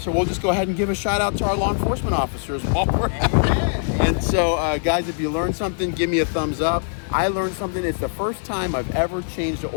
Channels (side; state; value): right; silent; digital silence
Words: we'll just go ahead and give a shout out to our law enforcement officers while we're at it. And so, guys, if you learned something, give me a thumbs up. I learned something. It's the first time I've ever changed the